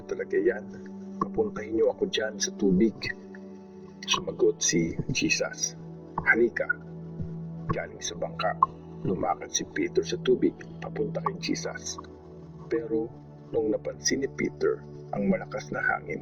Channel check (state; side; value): identical; both; correlation 1.00